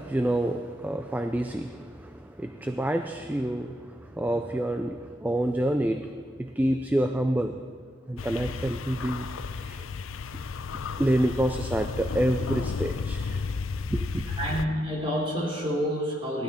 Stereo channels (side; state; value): both; normal; correlation 0.83